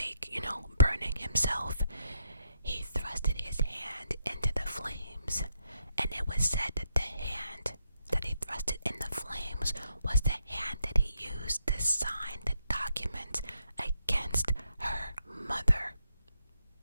burning himself, he thrusted his hand into the flames, and it was said that the hand that he thrusted in the flames was the hand that he used to sign the document against her mother.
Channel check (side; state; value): both; inverted; correlation -0.77